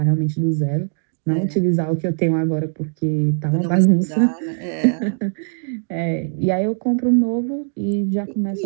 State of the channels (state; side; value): silent; left; digital silence